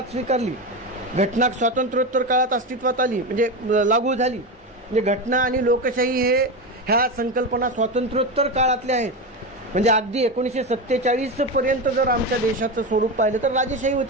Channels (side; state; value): both; normal; correlation 0.17